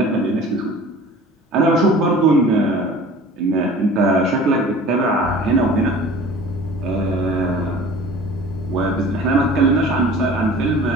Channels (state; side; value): normal; both; correlation 0.44